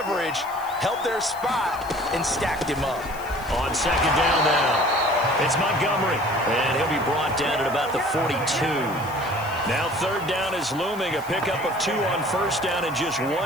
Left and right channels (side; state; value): left; noise; hiss, 19 dB below the sound